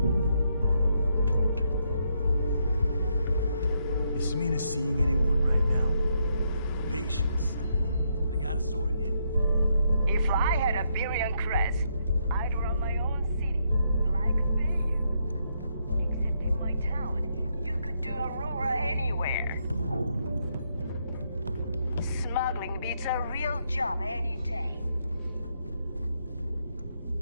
Is Samina seeing anyone right now? Patience. I got a sword here. If I had a Birion crest, I'd run my own city, like Bayou. Except in my town, you could do Aurora anywhere. Smuggling beats a real job any day.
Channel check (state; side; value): inverted; both; correlation -0.77